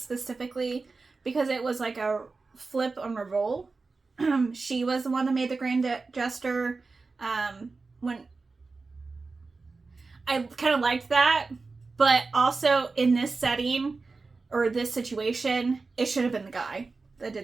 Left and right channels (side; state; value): left; quieter; 4.0 dB